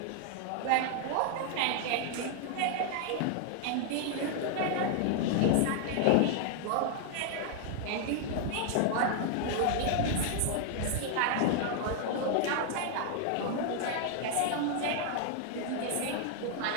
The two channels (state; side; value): different; both; correlation 0.00